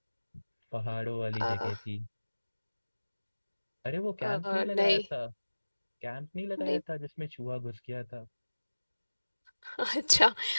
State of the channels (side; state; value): both; inverted; correlation -1.00